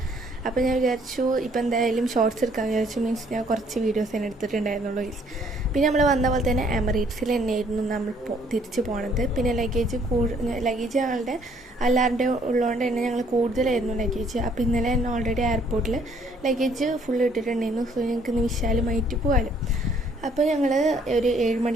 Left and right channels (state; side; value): normal; both; correlation 0.63